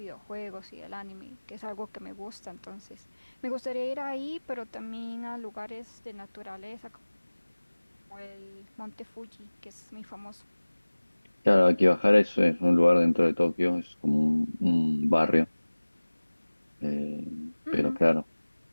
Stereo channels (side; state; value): both; inverted; correlation -1.00